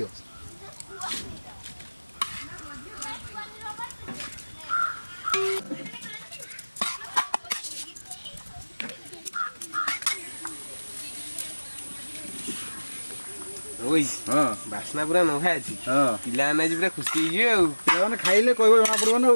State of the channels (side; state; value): both; inverted; correlation -1.00